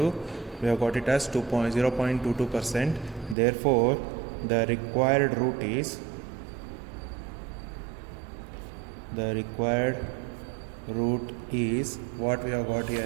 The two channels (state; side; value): drops out; left; at 3.4 s